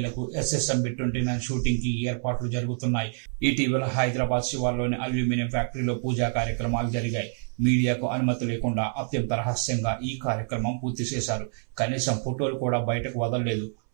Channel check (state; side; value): silent; left; 60 dB below the other